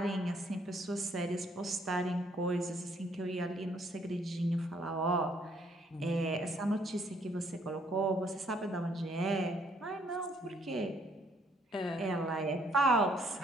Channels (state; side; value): normal; both; correlation 0.67